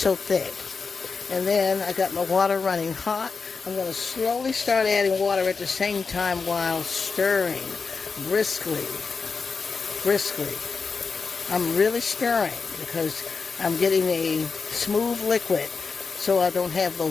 thick. And then I got my water running hot. I'm going to slowly start adding water at the same time while stirring briskly. I'm really stirring because I'm getting a smooth liquid so I don't have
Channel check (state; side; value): quieter; right; 4.9 dB